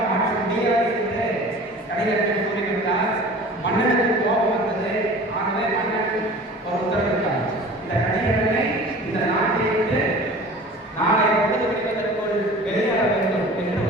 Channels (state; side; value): normal; both; correlation 0.41